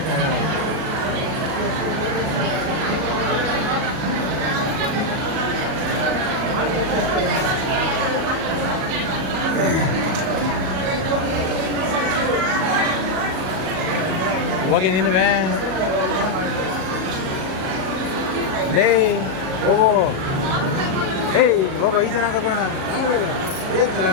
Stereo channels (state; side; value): late; left; 37 ms